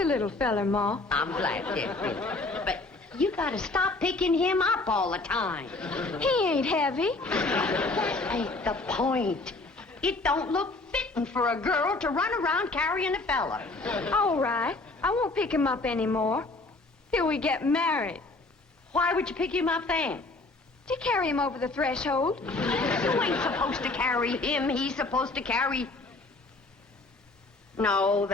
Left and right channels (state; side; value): quieter; right; 3.2 dB